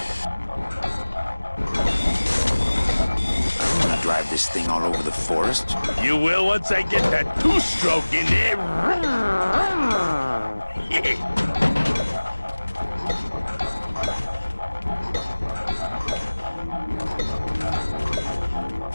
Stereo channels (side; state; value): both; inverted; correlation -1.00